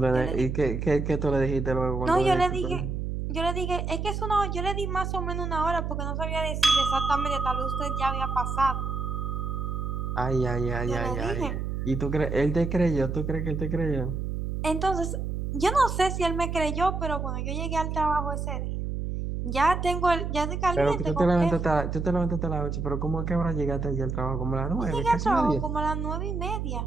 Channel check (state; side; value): noise; right; hum, 3 dB below the sound